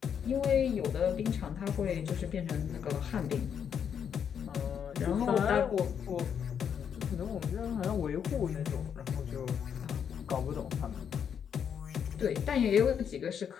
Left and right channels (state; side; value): quieter; right; 7.9 dB